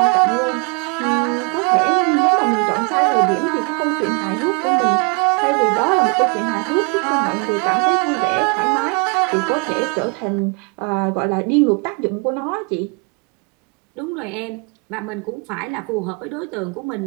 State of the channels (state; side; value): quieter; left; 33.7 dB